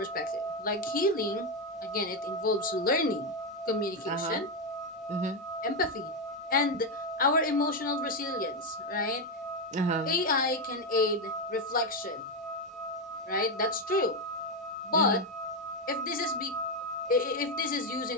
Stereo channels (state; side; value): normal; both; correlation 0.07